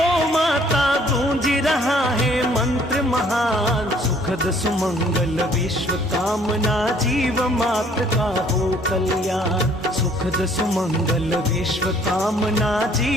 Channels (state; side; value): normal; both; correlation 0.60